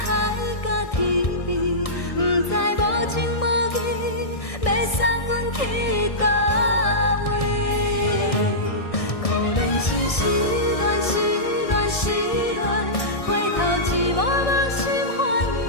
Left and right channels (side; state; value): right; late; 1.6 ms